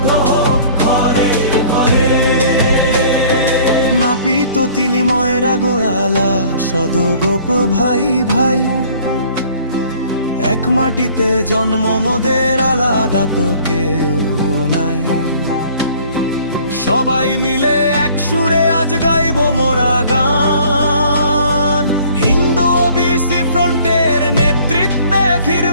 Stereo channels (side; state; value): both; inverted; correlation -0.53